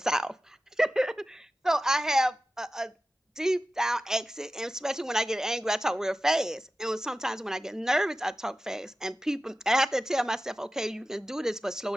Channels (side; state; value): both; normal; correlation 0.94